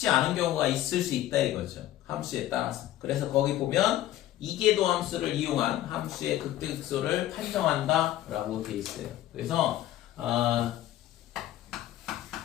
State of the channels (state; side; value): quieter; right; 13.6 dB